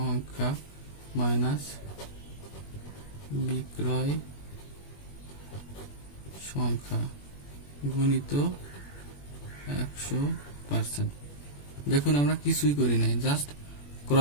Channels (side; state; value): right; late; 21 ms